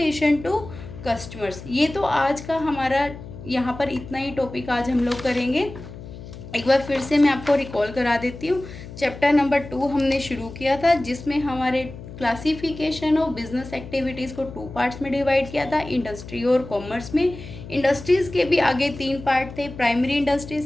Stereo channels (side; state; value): left; noise; hum, 14 dB below the sound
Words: to customers. ये तो आज का हमारा यहाँ पर इतना ही टॉपिक आज हम लोग करेंगे। एक बार फिर से मैं आपको रिकॉल करा देती हूँ। चैप्टर नंबर 2 हमने शुरू किया था, जिसमें हमारे क्लासिफिकेशन ऑफ बिजनेस एक्टिविटीज़ को 2 पार्ट्स में डिवाइड किया था, इंडस्ट्री और कॉमर्स में। इंडस्ट्रीज़ के भी आगे 3 पार्ट थे, primary industry,